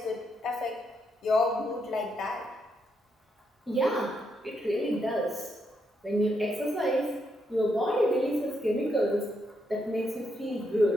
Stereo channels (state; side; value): normal; both; correlation 0.79